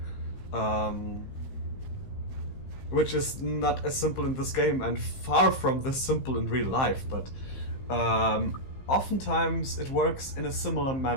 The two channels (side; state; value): right; late; 15 ms